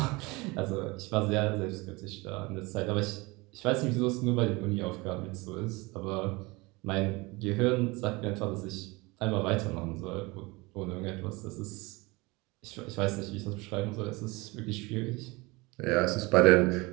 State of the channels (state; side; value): quieter; left; 24.1 dB